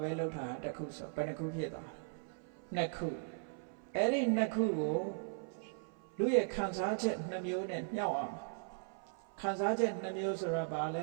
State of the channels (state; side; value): silent; left; 52 dB below the other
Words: ဘဲလုပ်တာတစ်ခုဆိုဘယ်နှခုဖြစ်သွားနှစ်ခုအဲ့ဒီနှစ်ခုကိုလူရဲ့ခံစားချက်နှမျိုးနဲ့မြှောက်အောင်ခံစားချက်နှမျိုးဆိုတာဘာလ